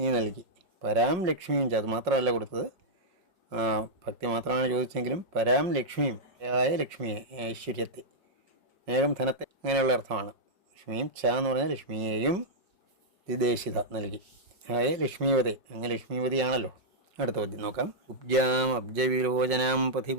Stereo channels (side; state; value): left; late; 5.3 ms